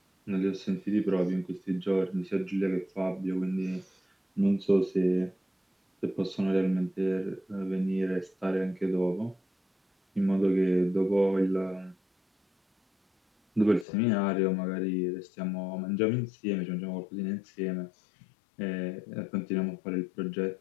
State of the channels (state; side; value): drops out; right; at 13.9 s